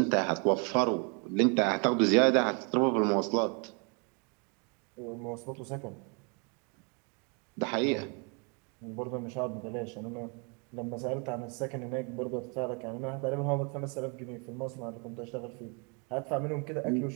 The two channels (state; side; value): quieter; left; 35.6 dB